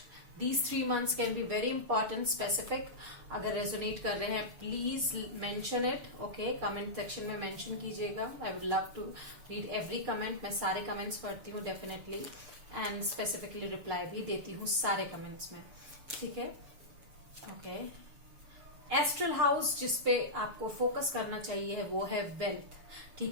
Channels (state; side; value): late; left; 7.0 ms